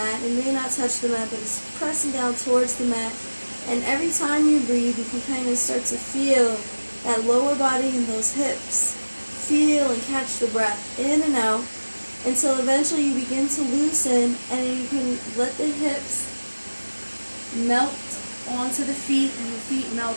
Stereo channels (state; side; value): inverted; both; correlation -1.00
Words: It may not touch the mat, but it's pressing down towards the mat. And every time you breathe, you can kind of start to feel that lower body and those hips. Feel and catch the breath in and out until eventually you begin to loosen and you can let the hips melt onto the feet and the feet